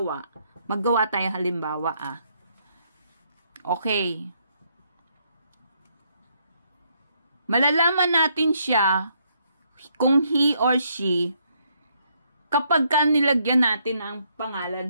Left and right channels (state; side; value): inverted; both; correlation -0.72